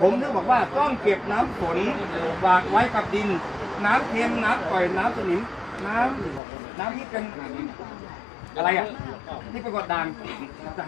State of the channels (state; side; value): drops out; right; at 6.4 s